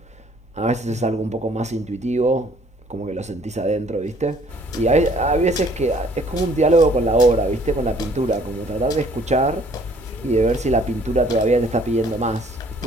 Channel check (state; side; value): normal; both; correlation 0.59